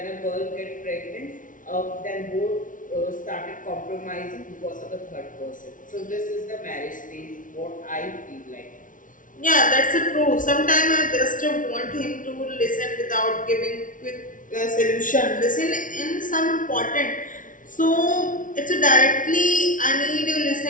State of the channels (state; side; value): late; right; 0.38 ms